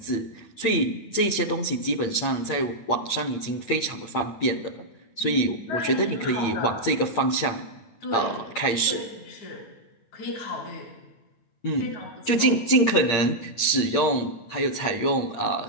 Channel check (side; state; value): right; late; 8.7 ms